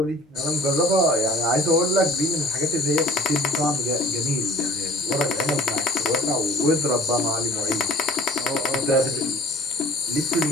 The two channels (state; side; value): normal; both; correlation 0.48